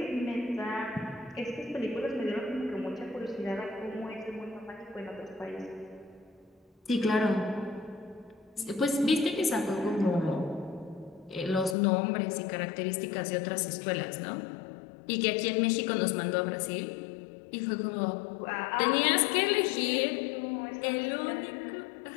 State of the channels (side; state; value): right; drops out; at 11.8 s